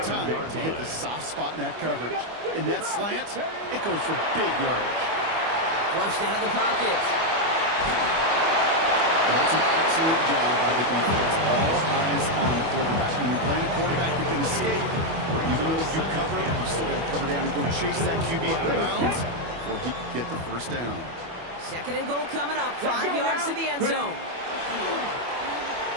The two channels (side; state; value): left; late; 25 ms